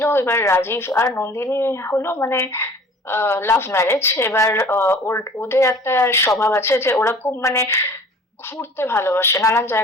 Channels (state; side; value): normal; both; correlation 0.47